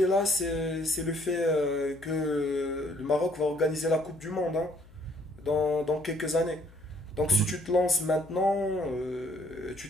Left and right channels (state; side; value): noise; left; hum, 23 dB below the sound